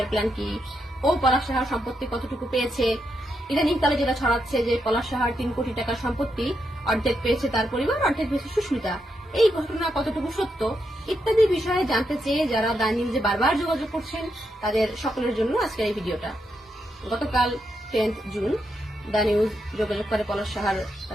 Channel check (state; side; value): normal; both; correlation 0.82